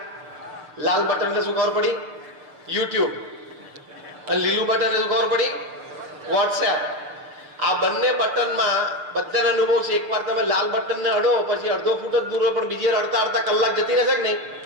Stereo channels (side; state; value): left; late; 6.9 ms